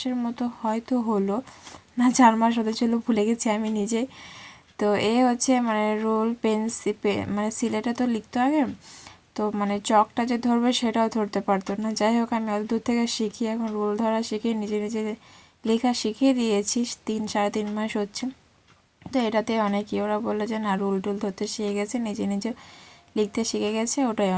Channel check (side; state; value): both; identical; correlation 1.00